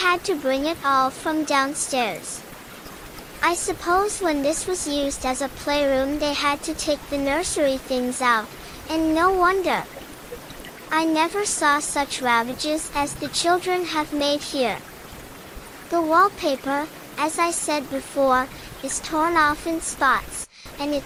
to bring it all from downstairs. I suppose when this was used as a playroom they had to take the nursery things out, and no wonder. I never saw such ravages as the children have made here. The wallpaper, as I said before, is torn off in spots, and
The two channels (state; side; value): identical; both; correlation 1.00